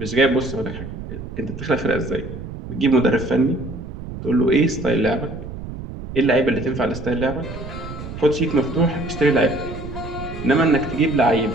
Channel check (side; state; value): right; noise; rumble, 10 dB below the sound